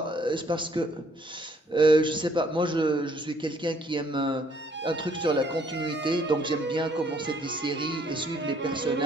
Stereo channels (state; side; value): normal; both; correlation 0.64